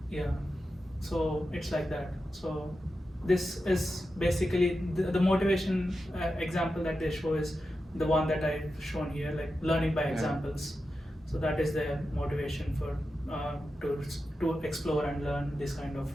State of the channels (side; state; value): both; normal; correlation 0.90